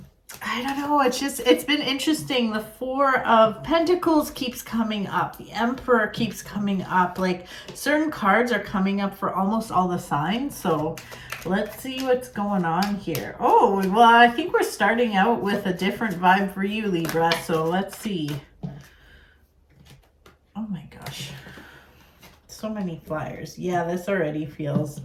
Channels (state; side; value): identical; both; correlation 1.00